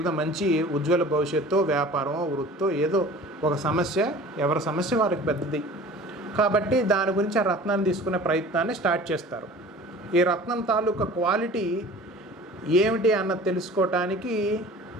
మంచి ఉజ్వల భవిష్యత్తు, వ్యాపారం, వృత్తో, ఏదో ఒక సమస్య, ఎవరి సమస్య వారికి పెద్దది కాబట్టి దాని గురించి ఆ రత్నాన్ని తీసుకునే ప్రయత్నాన్ని స్టార్ట్ చేస్తారు. ఈ రత్నం తాలూకా క్వాలిటీ ఏమిటి అన్నది తెలుసుకోవటానికి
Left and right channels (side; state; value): both; normal; correlation 0.43